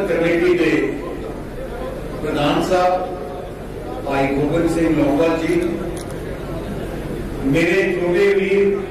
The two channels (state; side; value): identical; both; correlation 1.00